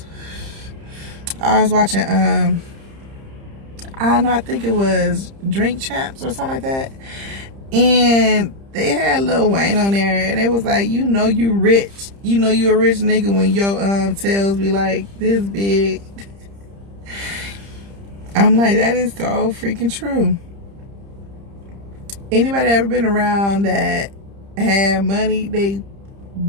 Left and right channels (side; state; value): left; late; 30 ms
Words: I was watching, I don't know, I think it was Drink Champs or something like that. And they had Lil Wayne on there, and it was like, you know you rich. You know you a rich nigga when your tails be like this big. I'm like, that is so freaking true. Anybody ever been around that had money, they